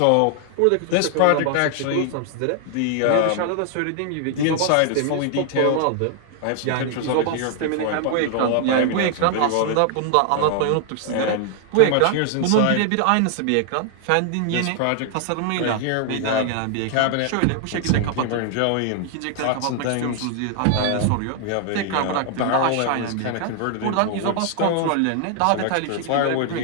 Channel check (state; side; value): different; both; correlation 0.00